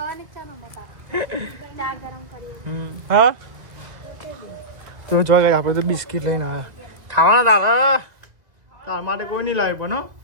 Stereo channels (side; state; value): left; late; 1.9 ms